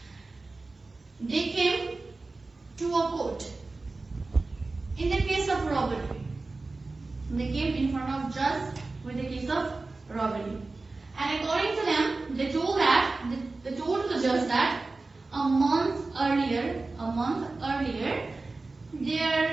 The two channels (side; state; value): left; quieter; 3.5 dB